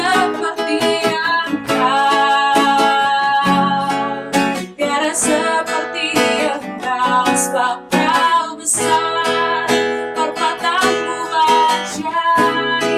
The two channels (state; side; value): identical; both; correlation 1.00